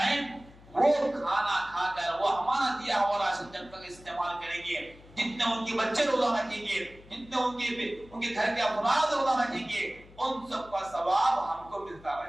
وہ کھانا کھا کر وہ ہمارا دیا ہوا راشن جب تک استعمال کریں گے، جتنے ان کے بچے روزہ رکھیں گے، جتنے ان کے گھر کے افراد روزہ رکھیں گے، ان سب کا ثواب ہم کو ملتا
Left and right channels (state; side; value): noise; left; hum, 22 dB below the sound